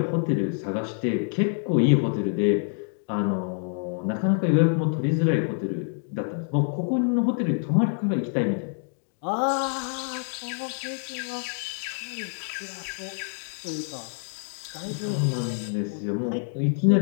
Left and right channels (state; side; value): silent; right; 58 dB below the other